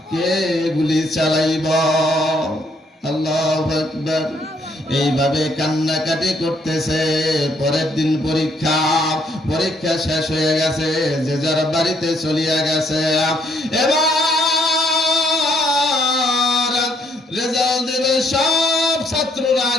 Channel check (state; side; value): normal; both; correlation 0.69